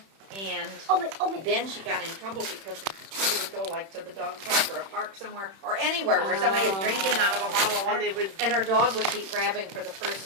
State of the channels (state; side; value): late; left; 31 ms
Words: and then she got in trouble because she would go like to the dog park or a park somewhere or anywhere where somebody is drinking out of a bottle of water, and her dog would keep grabbing for the